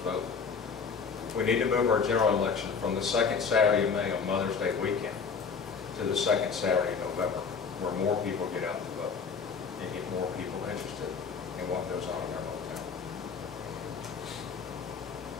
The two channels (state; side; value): quieter; right; 5.7 dB